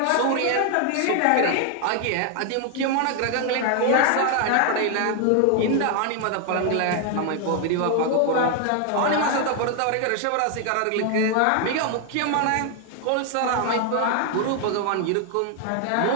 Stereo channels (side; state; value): both; different; correlation 0.00